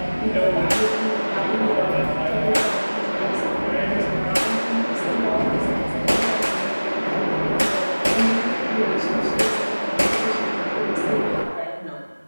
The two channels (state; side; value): inverted; both; correlation -1.00